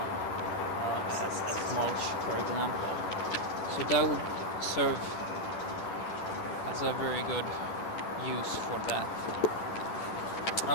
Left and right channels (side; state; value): right; late; 10 ms